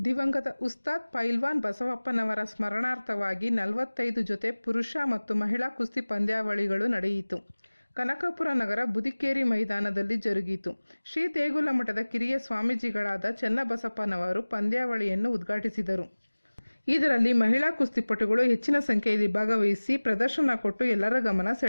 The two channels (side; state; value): both; inverted; correlation -1.00